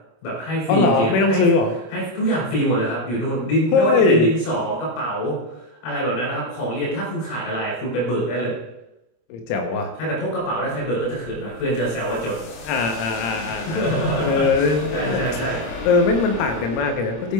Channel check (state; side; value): late; right; 26 ms